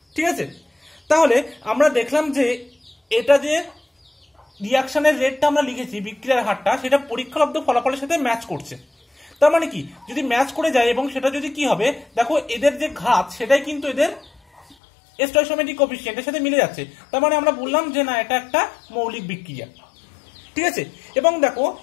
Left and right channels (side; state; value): right; drops out; at 14.8 s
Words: ঠিক আছে। তাহলে আমরা দেখলাম যে এটা যে রিয়াকশনের রেটটা আমরা লিখেছি, বিক্রিয়ার হারটা, সেটা পরীক্ষালব্ধ ফলাফলের সাথে ম্যাচ করছে। তার মানে কি, যদি ম্যাচ করে যায় এবং সেটা যদি কি হবে, দেখো এদের যে ঘাত সেটাই কিন্তু এদের স্টয়কিওমেট্রিক কোএফিসিয়েন্টের সাথে মিলে যাচ্ছে, তার মানে আমরা বললাম যে না এটা একটা মৌলিক বিক্রিয়া, ঠিক আছে। এবং দেখো